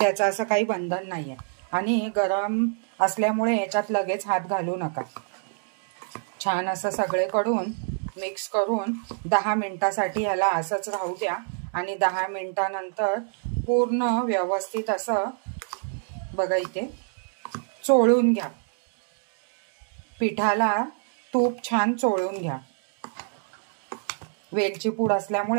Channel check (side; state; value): left; silent; digital silence